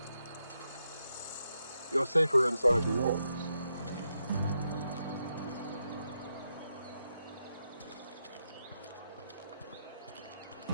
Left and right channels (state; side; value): inverted; both; correlation -0.84